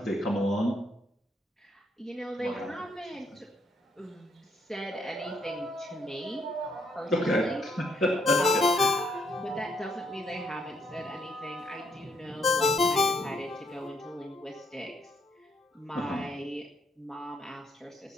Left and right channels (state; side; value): normal; both; correlation 0.73